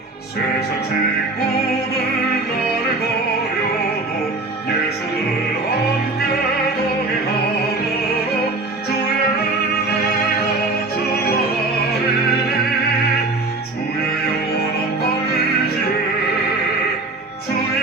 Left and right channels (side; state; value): left; quieter; 3.2 dB